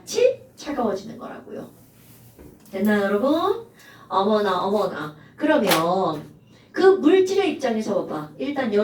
차가워지는 거라고요. 됐나요, 여러분? 어머나. 그러면 그 물질의 입장에서 봐봐. 일단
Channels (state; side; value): identical; both; correlation 1.00